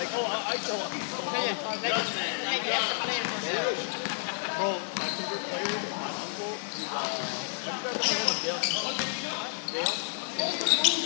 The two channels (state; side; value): silent; right; digital silence